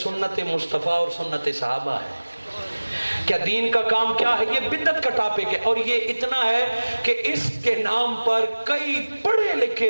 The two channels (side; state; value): both; inverted; correlation -1.00